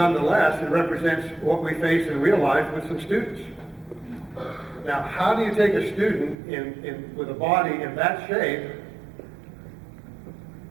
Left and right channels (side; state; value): left; drops out; at 6.4 s